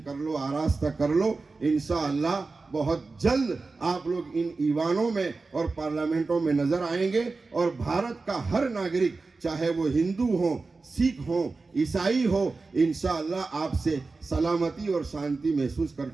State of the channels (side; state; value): left; quieter; 3.9 dB